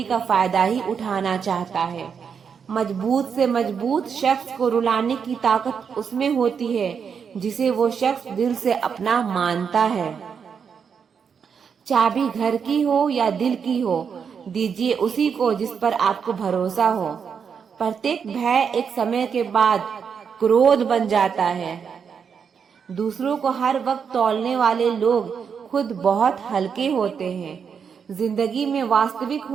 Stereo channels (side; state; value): left; quieter; 6.7 dB